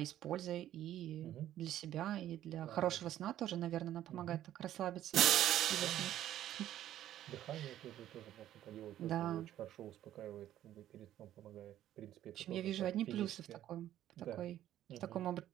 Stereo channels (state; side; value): quieter; left; 12.3 dB